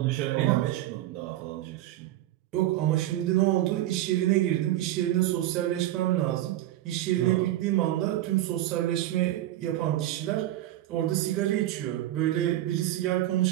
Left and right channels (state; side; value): quieter; left; 14.4 dB